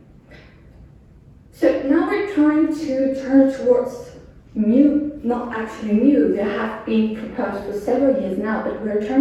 So now we're trying to turn towards new, not actually new, they have been proposed for several years now, but we're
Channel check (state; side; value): identical; both; correlation 1.00